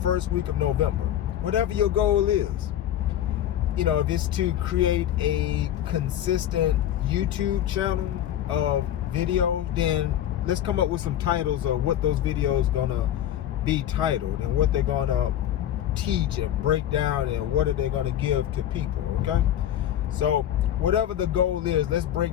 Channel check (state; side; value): quieter; right; 11.3 dB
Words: week of November. Whatever your goal is, if it's to create a consistent YouTube channel of videos, then let's come up with some titles of what those videos gonna be titled and what they're gonna teach and break down and what are they gonna give to people. Okay, so whatever the goal is, let's